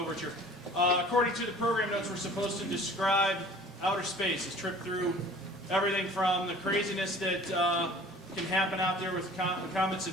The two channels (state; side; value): normal; both; correlation 0.47